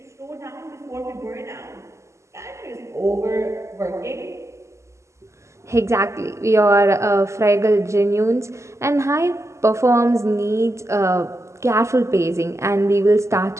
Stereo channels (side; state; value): left; late; 0.14 ms